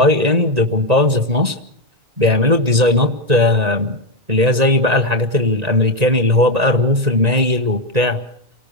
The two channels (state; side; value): late; left; 1.9 ms